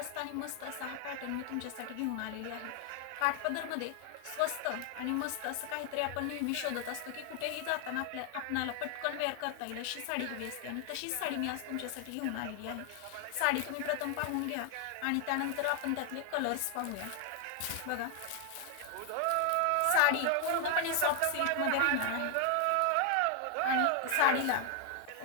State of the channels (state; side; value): different; both; correlation 0.00